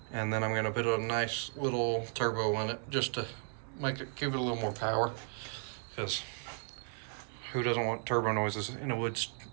and then I'm going to put a nice little turbo on it just to give it a little more power, because who doesn't want turbo noises in a woods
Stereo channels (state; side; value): silent; left; 54 dB below the other